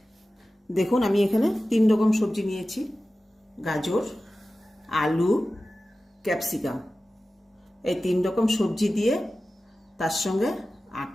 দেখুন, আমি এখানে 3 রকম সবজি নিয়েছি: গাজর, আলু, ক্যাপসিকাম। এই 3 রকম সবজি দিয়ে তার সঙ্গে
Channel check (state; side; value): normal; both; correlation 0.95